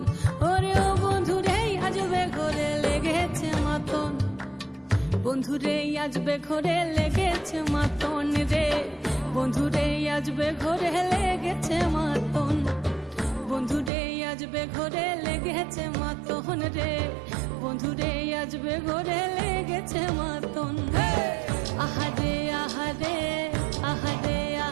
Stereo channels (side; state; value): left; drops out; at 13.9 s